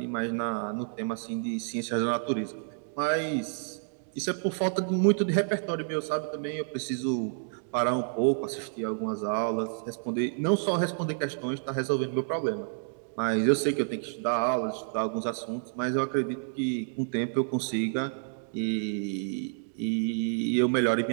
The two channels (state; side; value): silent; left; digital silence